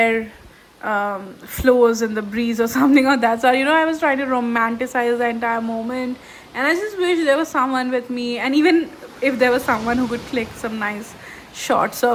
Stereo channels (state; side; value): identical; both; correlation 1.00